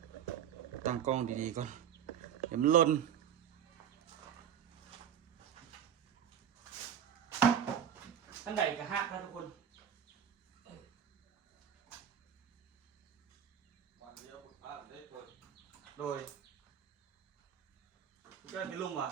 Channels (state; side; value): quieter; left; 9.0 dB